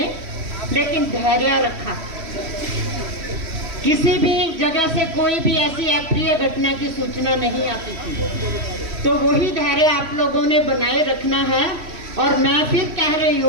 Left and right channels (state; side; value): late; left; 3.1 ms